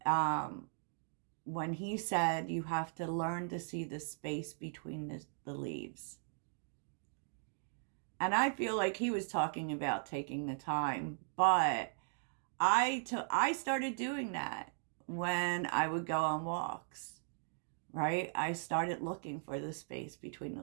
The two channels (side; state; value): left; silent; digital silence